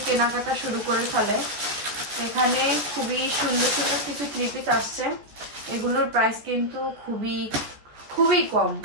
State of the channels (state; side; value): late; left; 14 ms